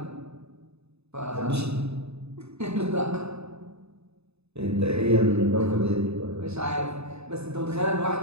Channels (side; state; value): left; late; 0.80 ms